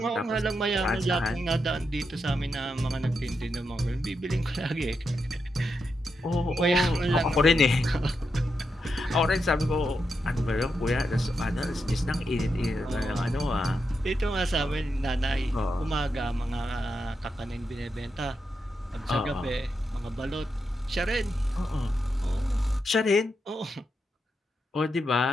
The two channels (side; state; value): both; normal; correlation 0.85